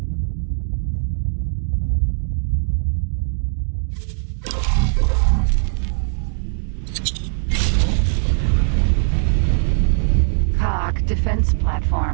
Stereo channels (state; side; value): silent; left; digital silence